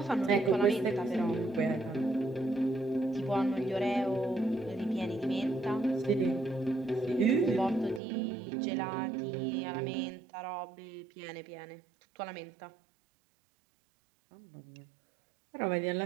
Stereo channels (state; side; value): drops out; left; at 8.0 s